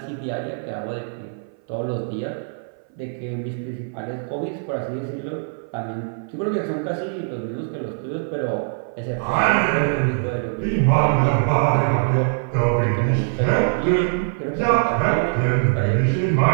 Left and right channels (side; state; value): left; silent; 56 dB below the other